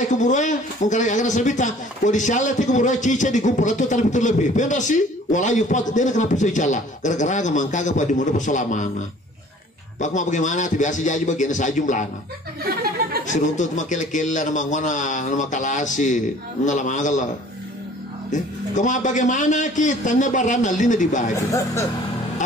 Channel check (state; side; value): normal; both; correlation 0.51